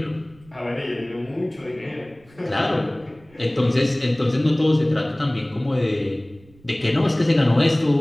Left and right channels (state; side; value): noise; right; rumble, 27 dB below the sound